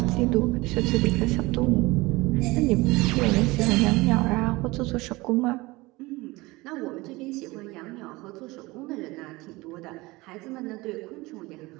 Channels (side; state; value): left; quieter; 21.8 dB